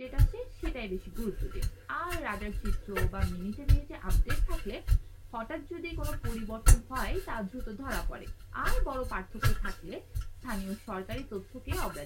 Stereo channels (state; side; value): identical; both; correlation 1.00